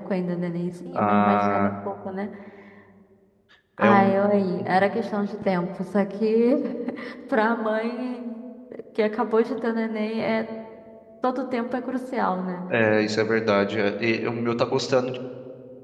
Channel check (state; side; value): identical; both; correlation 1.00